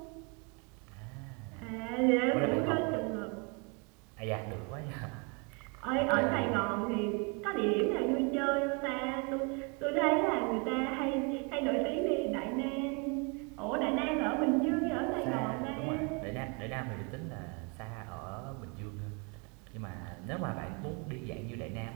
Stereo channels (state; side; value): quieter; left; 32.8 dB